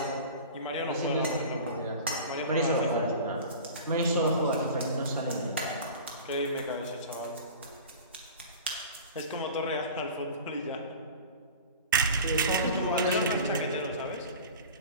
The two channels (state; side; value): inverted; both; correlation -0.36